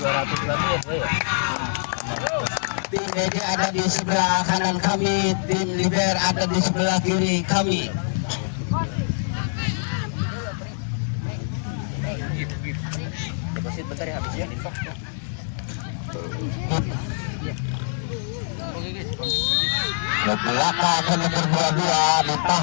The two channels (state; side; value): silent; right; digital silence